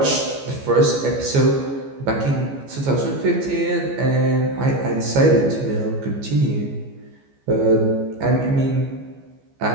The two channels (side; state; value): left; late; 14 ms